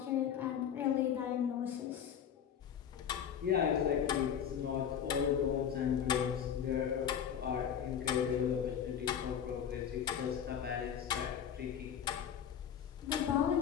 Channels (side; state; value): right; quieter; 8.6 dB